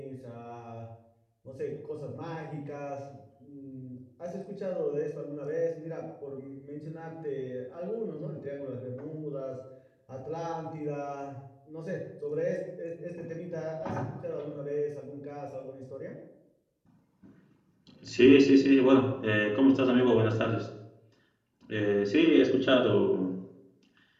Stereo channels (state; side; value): identical; both; correlation 1.00